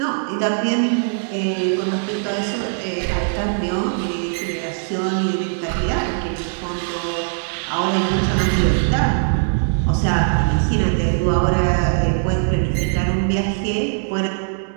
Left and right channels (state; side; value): silent; left; digital silence